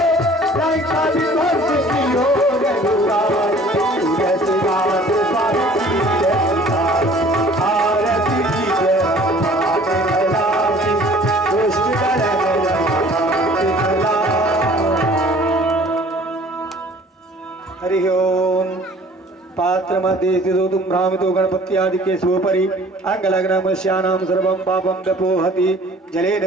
मध्ये स्थितो तुम भ्रामितो गणपत्यादि केशवोपरि अंगलग्नमस्यानां सर्वं पापं व्यपोहति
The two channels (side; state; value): both; normal; correlation 0.51